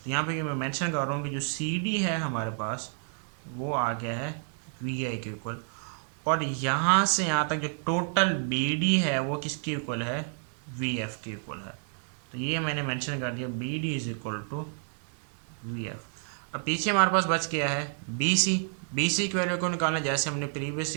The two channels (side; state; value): left; silent; 58 dB below the other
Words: यहाँ पे मैं मेंशन कर रहा हूँ कि जो सी डी है हमारे पास वो आ गया है वी आई के इक्वल, और यहाँ से यहाँ तक जो टोटल बी डी है वो किसके इक्वल है, वी एफ के इक्वल है। तो ये मैंने मेंशन कर दिया, B D is equal to V F. अब पीछे हमारे पास बच गया है बी सी। बी सी की वैल्यू को निकालना जैसे हमने प्रीवियस